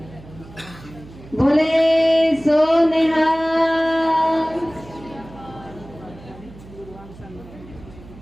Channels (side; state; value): right; noise; hum, 19 dB below the sound